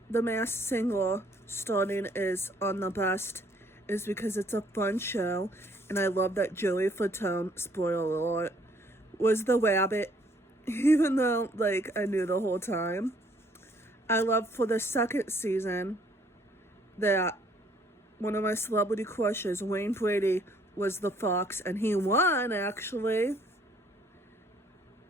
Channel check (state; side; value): normal; both; correlation 0.63